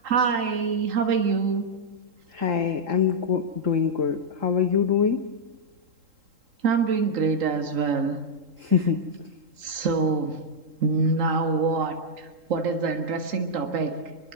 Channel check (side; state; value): left; late; 3.8 ms